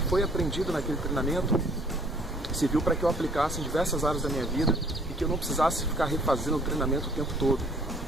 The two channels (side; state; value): both; normal; correlation 0.57